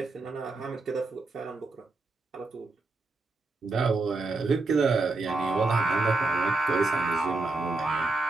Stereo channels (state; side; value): quieter; left; 3.4 dB